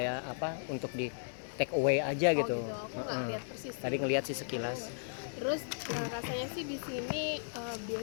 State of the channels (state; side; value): silent; right; 54 dB below the other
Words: apa untuk di take away aja gitu. Aku nggak lihat persis. Tadi ngelihat sih sekilas. Terus rasanya sih di sini